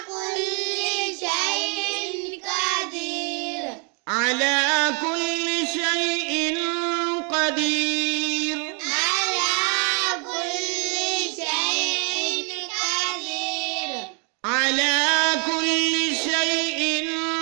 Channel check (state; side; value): quieter; left; 36.1 dB